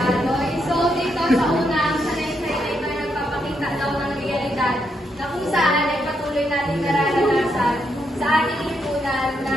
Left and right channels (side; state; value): both; normal; correlation 0.79